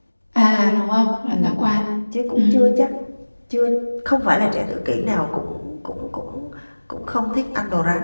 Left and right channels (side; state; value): both; inverted; correlation -1.00